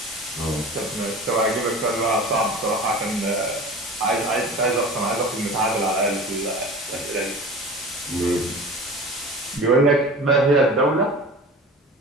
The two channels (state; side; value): normal; both; correlation 0.37